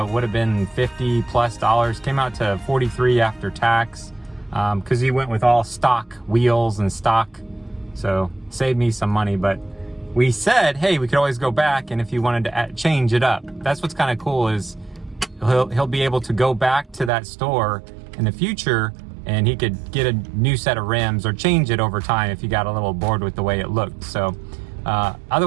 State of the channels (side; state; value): left; drops out; at 17.1 s